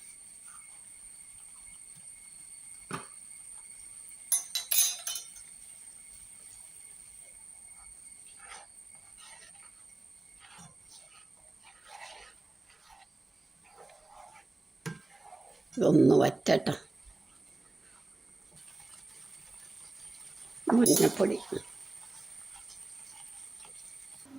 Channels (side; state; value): left; quieter; 3.0 dB